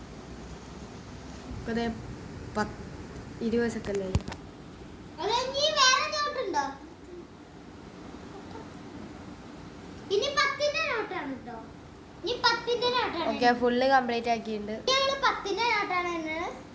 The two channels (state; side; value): identical; both; correlation 1.00